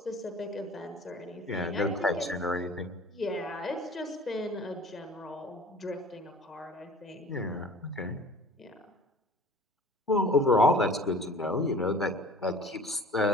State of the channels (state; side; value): normal; both; correlation 0.45